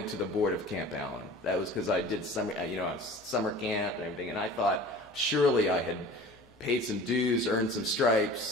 to the board of Camp Allen. That was because I did summer camp and everything, and I thought surely I had paid some dues, earned some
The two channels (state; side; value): normal; both; correlation 0.42